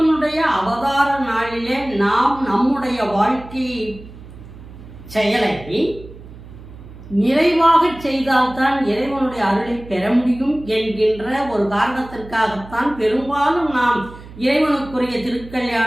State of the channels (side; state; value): right; noise; hum, 17 dB below the sound